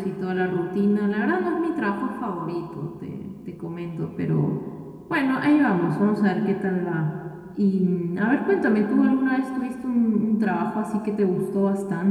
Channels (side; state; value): both; identical; correlation 1.00